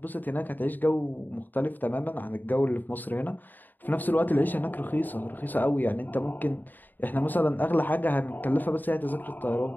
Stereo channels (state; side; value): late; right; 0.088 ms